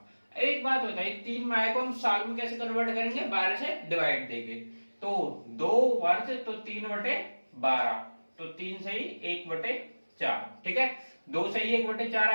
एक बात बताइए, 3 माह को हम साल में कैसे कन्वर्ट करेंगे, 12 से डिवाइड देंगे। तो 2 वर्ष तो 3/12, तो 3 से ही 1/4। ठीक है, 2 से ही 1/4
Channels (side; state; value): both; inverted; correlation -1.00